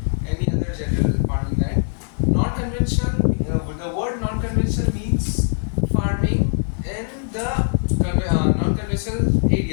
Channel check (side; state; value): right; silent; digital silence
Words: any other general farming land. Non-conventional, the word non-conventional means farming in the non-conventional